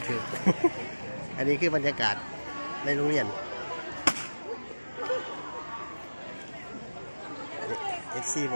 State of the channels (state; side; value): inverted; both; correlation -1.00